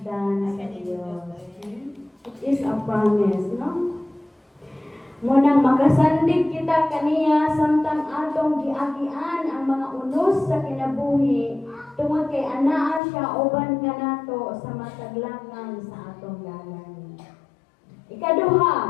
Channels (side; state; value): right; drops out; at 13.0 s